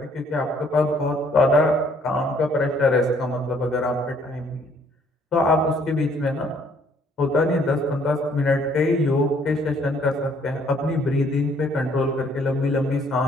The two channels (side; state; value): both; normal; correlation 0.63